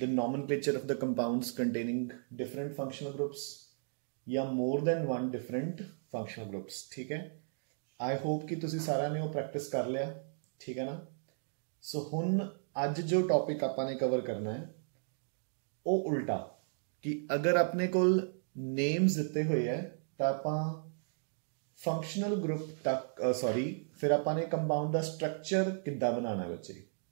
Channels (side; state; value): left; silent; digital silence